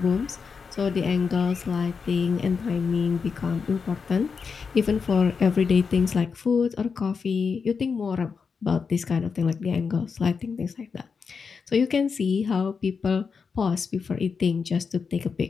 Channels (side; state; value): right; quieter; 5.5 dB